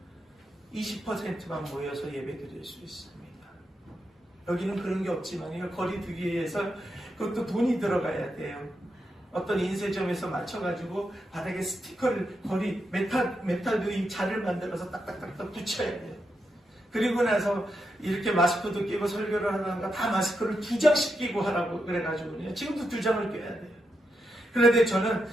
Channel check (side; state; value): both; normal; correlation 0.85